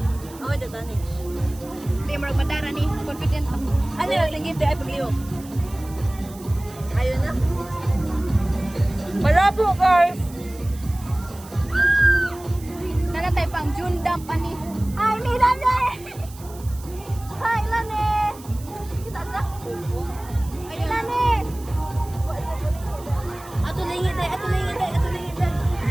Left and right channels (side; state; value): right; noise; hiss, 20 dB below the sound